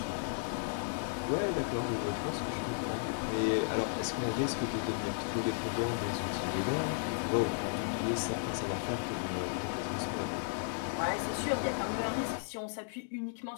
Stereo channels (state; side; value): silent; right; digital silence